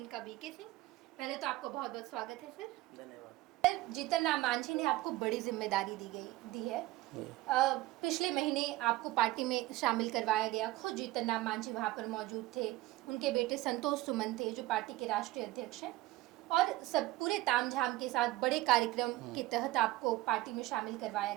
बीके सिंह। पहले तो आपको बहुत बहुत स्वागत है सर। धन्यवाद। जीतन राम मांझी ने आपको बड़ी जिम्मेदारी दी है। पिछले महीने आपको पार्टी में शामिल करवाया गया। खुद जीतन राम मांझी वहाँ पर मौजूद थे। उनके बेटे संतोष सुमन थे जो पार्टी के राष्ट्रीय अध्यक्ष हैं, और सब पूरे तामझाम के साथ बड़े कार्यक्रम के तहत आपको पार्टी में शामिल करवाया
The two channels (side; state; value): left; quieter; 17.7 dB